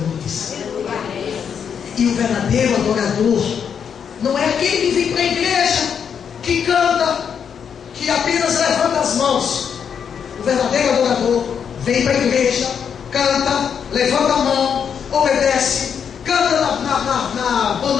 E o verdadeiro adorador não é aquele que vem para a igreja, que canta, que apenas levanta as mãos. O verdadeiro adorador vem para a igreja, canta, levanta a mão, obedece, canta na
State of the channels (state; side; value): quieter; right; 7.4 dB